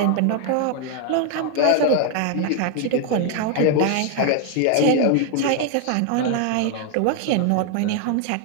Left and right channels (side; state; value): both; different; correlation 0.00